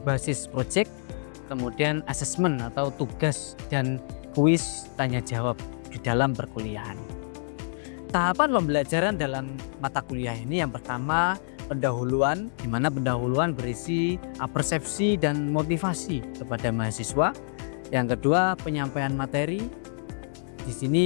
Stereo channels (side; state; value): right; silent; digital silence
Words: proyek, kemudian assessment atau tugas dan kuis tanya jawab di dalam perkuliahan. Tahapan pembelajaran dalam mata kuliah ini yang pertama pendahuluan, di mana pendahuluan berisi persepsi dan motivasi kepada mahasiswa. Yang kedua penyampaian materi. Di